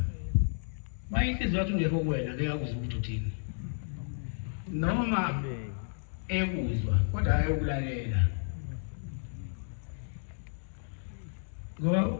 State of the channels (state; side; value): silent; right; digital silence